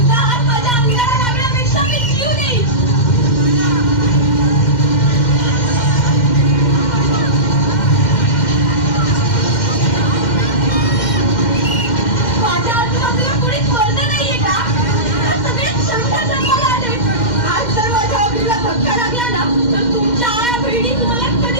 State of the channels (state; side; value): late; right; 2.1 ms